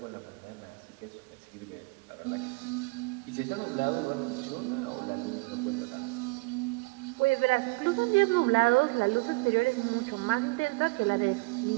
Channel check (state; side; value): quieter; left; 26.5 dB